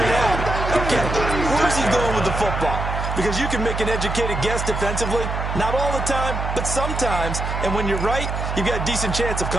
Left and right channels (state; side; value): noise; right; hum, 3 dB below the sound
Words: out, okay, where's he going with the football? Because you can make an educated guess defensively, not all the time, but sometimes. And when you're right, you've got a decent chance of